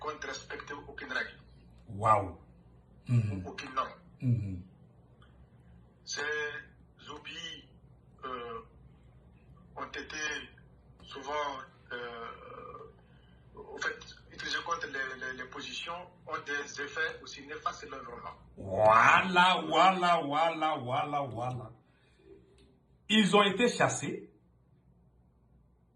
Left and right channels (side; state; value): both; identical; correlation 1.00